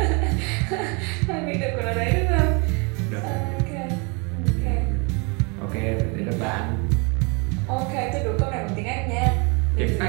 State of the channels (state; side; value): quieter; left; 31.9 dB